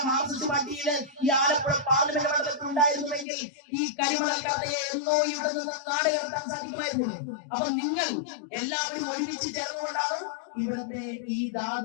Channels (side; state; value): right; drops out; at 3.2 s